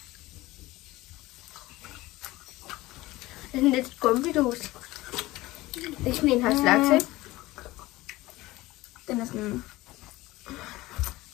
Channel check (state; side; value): quieter; right; 18.8 dB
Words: Det er sådan lidt gummidås. Det Det er sådan en her slags, ikke? Den er sådan...